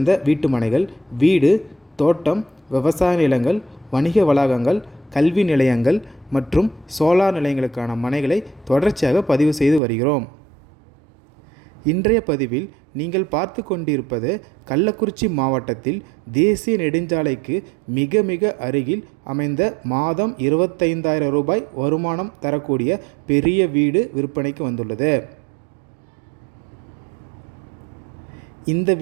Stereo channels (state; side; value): drops out; left; at 9.8 s